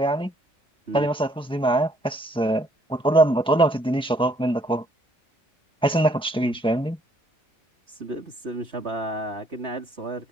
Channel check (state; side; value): normal; both; correlation 0.66